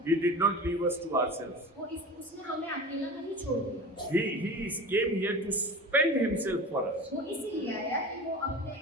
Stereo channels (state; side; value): normal; both; correlation 0.34